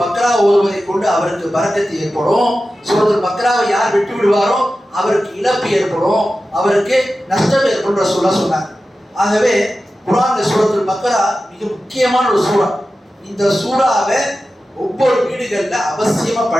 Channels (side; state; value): both; normal; correlation 0.93